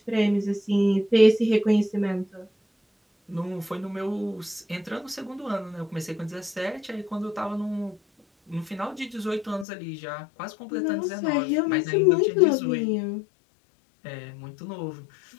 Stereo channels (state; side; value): drops out; right; at 9.7 s